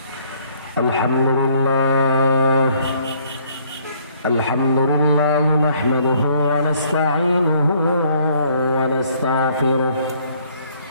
الحمد لله نحمده ونستعينه ونستغفره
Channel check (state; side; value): inverted; both; correlation -0.63